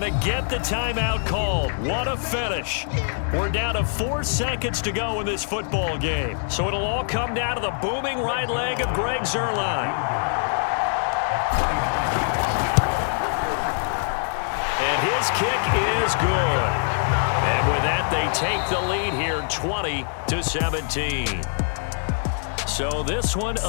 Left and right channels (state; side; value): silent; right; digital silence